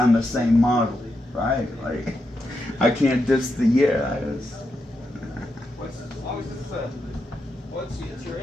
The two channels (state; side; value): normal; both; correlation 0.85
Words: the same model, right? Like, I can't diss the year. It's your